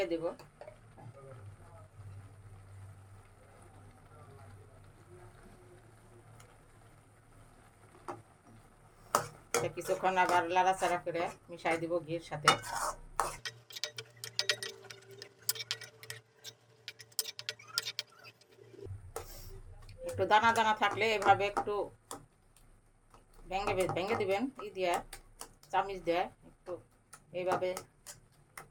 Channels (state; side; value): identical; both; correlation 1.00